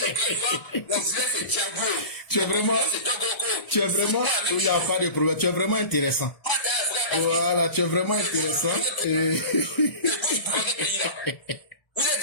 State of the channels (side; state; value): right; late; 1.0 ms